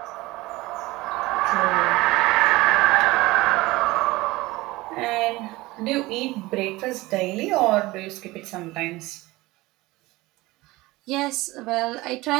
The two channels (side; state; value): left; quieter; 20.1 dB